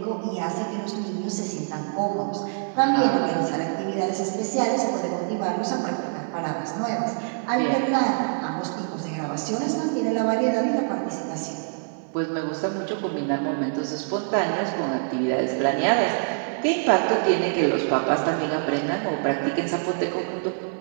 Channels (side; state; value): left; silent; digital silence